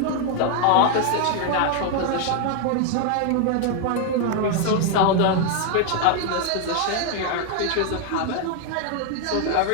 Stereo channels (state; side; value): different; both; correlation 0.00